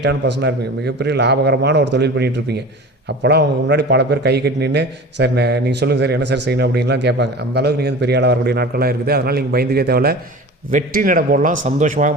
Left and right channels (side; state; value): both; normal; correlation 0.36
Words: பர்சனாக இருப்பீங்க. மிகப்பெரிய லாபகரமான ஒரு தொழில் பண்ணிகிட்ருப்பீங்க. அப்போலாம் அவங்க முன்னாடி பல பேர் கை கட்டி நின்று சார் நீங்கள் சொல்லுங்கள் சார் என்ன சார் செய்யணும் அப்படின்லாம் கேட்பாங்க. அந்தளவுக்கு நீங்கள் வந்து பெரிய ஆளாக வரக்கூடிய நாட்கள்லாம் இருக்குது. அதனால் நீங்கள் பயந்துக்கே தேவையில்ல. வெற்றி நட போடலாம், சந்தோஷமாக